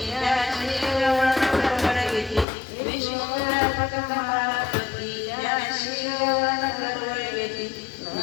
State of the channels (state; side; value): drops out; right; at 2.5 s